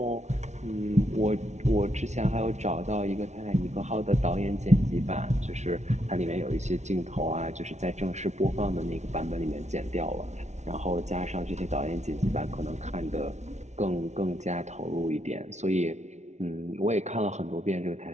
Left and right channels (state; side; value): late; left; 0.33 ms